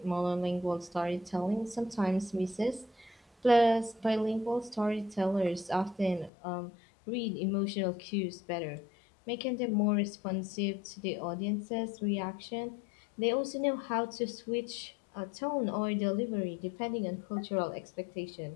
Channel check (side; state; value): right; drops out; at 6.3 s